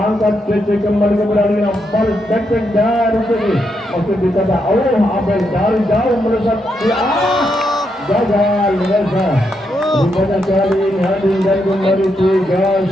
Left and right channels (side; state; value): both; normal; correlation 0.81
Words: CC kembali kepada Lina. Baris backpack dari sini masih ditata. Abel dari jauh melesat gagal Reza. Rupanya kali ini hadir dan kembali 3